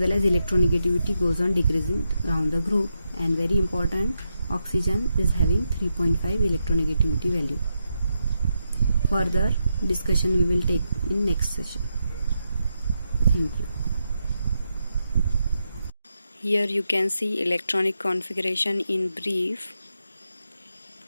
as electronegativity goes on decreasing down the group. And very important, oxygen is having 3.5 electronegativity value. Further discussion we will take in next session. Thank you. Here you can see electronic configuration in brief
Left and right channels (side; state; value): both; inverted; correlation -0.85